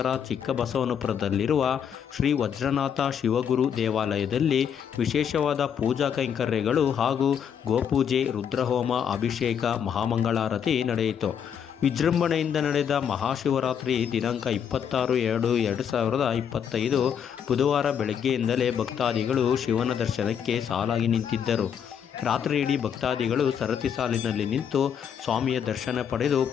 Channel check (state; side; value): quieter; right; 8.1 dB